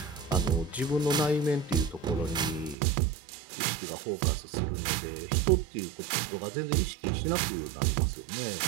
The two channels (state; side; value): drops out; left; at 2.8 s